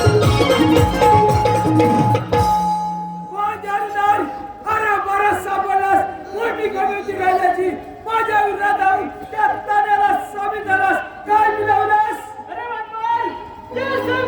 अरे बरं सापडलास. मोठी कमी होती राजाची. माझ्या विरोधात जाऊन त्या ताण्याला सामील झालास. काय मिळवलास? अरे बापरे, ते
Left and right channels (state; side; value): identical; both; correlation 1.00